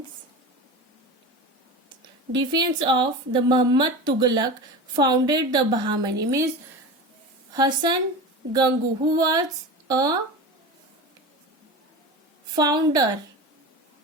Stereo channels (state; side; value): normal; both; correlation 0.28